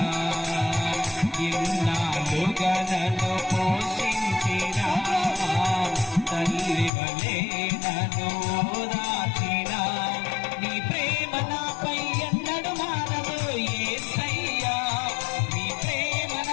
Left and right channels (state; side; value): drops out; right; at 6.9 s